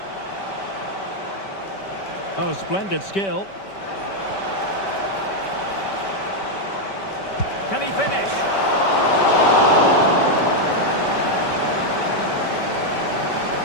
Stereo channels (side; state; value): right; late; 5.2 ms